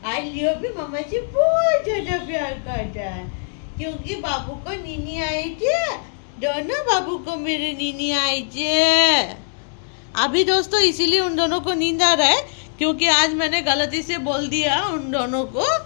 आज लियो भी मामा से बहुत ज्यादा प्यार करता है क्योंकि बाबू को नीनी आई थी दोनों बाबू को मेरे नीनी आई थी अभी दोस्तों इसीलिए उन दोनों को नींद आ रहा है क्योंकि आज मैंने गलती से बोल दिया उन दोनों को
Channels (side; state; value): right; silent; digital silence